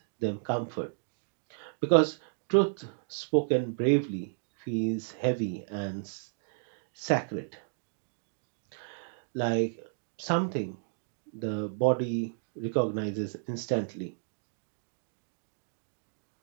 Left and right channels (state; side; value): silent; left; digital silence